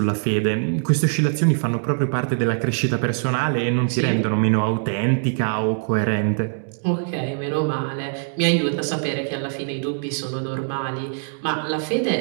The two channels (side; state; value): left; silent; digital silence